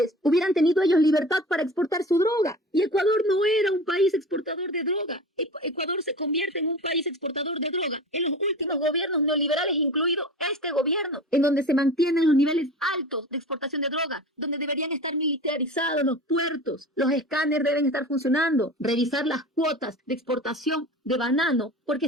hubieran tenido ellos libertad para exportar su droga. Y Ecuador no era un país exportador de droga. Ecuador se convierte en un país exportador de droga en los últimos gobiernos neoliberales, incluido este gobierno, en donde se mantienen los niveles altos de exportación de droga, donde deberían estar militarizados los puertos, los escáneres deben estar funcionando, revisar las cuotas de exportación de banano, porque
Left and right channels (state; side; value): normal; both; correlation 0.35